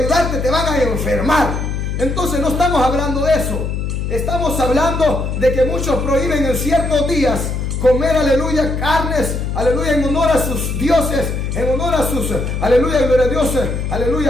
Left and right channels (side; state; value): left; noise; hum, 2 dB below the sound